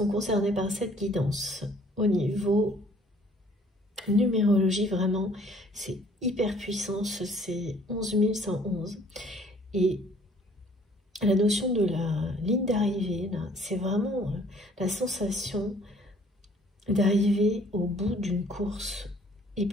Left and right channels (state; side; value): normal; both; correlation 0.58